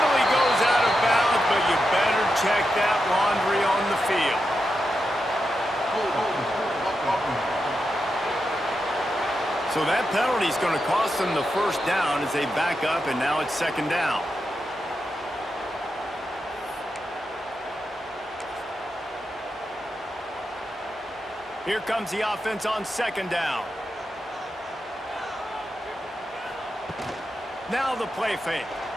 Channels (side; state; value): both; normal; correlation 0.87